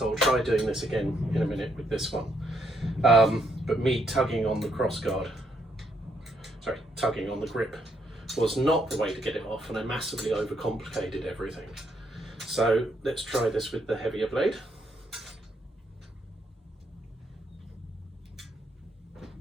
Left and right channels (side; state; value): both; normal; correlation 0.74